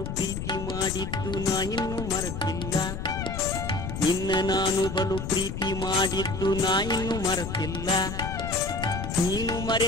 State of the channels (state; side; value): noise; left; rumble, 5 dB below the sound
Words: ಪ್ರೀತಿ ಮಾಡಿದ್ದು ನಾ ಇನ್ನೂ ಮರೆತಿಲ್ಲ, ನಿನ್ನ ನಾನು ಬಲು ಪ್ರೀತಿ ಮಾಡಿದ್ದು ನಾ ಇನ್ನೂ ಮರೆತಿಲ್ಲ. ನೀನು